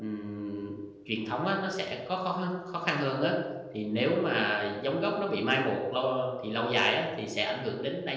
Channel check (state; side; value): identical; both; correlation 1.00